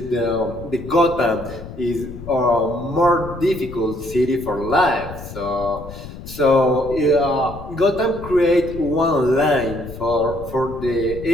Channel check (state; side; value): noise; left; rumble, 13 dB below the sound